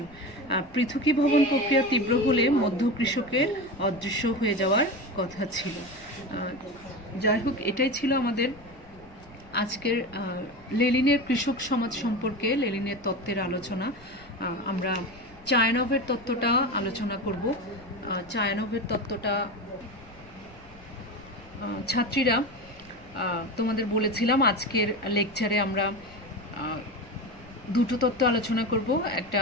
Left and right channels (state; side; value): noise; left; rumble, 24 dB below the sound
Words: পৃথকী ভবন প্রক্রিয়া তীব্র হলে মধ্য কৃষকের অদৃশ্য হয়ে যাওয়ার কথা ছিল। যাই হোক, এটাই ছিল আমাদের আজকের লেনিনের কৃষক সমাজ সম্পর্কে লেনিনের তত্ত্বের আলোচনা। আমরা চায়ানভের তত্ত্বটা আলোচনা করব। চায়ানভের তত্ত্বটা ছাত্রীরা তোমাদের বলেছিলাম আজকের লেকচারে আমরা দুটো তত্ত্ব আলোচনা করব,